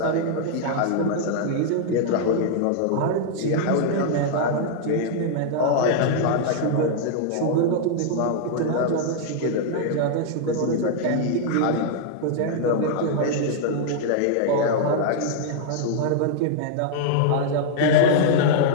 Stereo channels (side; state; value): both; different; correlation -0.01